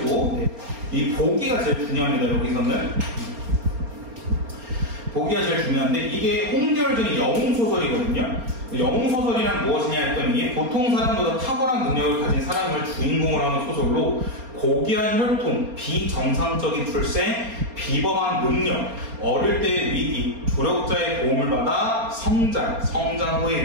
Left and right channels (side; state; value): left; late; 4.3 ms